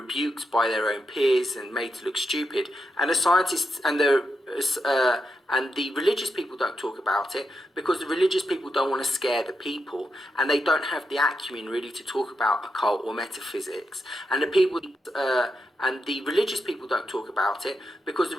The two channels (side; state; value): both; normal; correlation 0.85